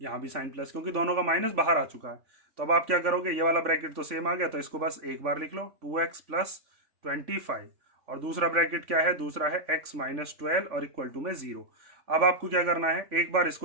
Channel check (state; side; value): late; left; 3.5 ms